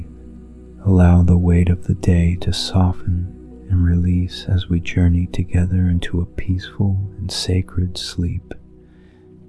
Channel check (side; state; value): both; identical; correlation 1.00